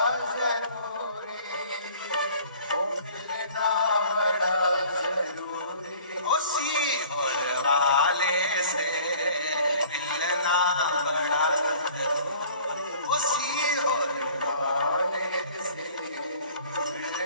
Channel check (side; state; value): both; inverted; correlation -0.50